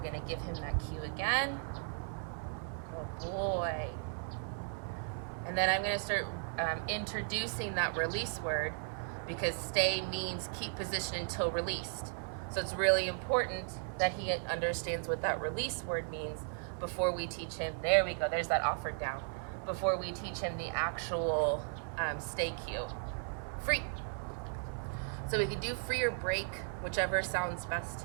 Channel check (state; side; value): silent; left; 54 dB below the other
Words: to give him that cue again. Good boy. And then I'm going to start introducing that release word, because stay means keep position until released. So it's really important that he understands what that release word means before we teach him. There we go. There's that offered down. Before we teach him the actual stay cue. Free. So we can do free or break, whichever sounds best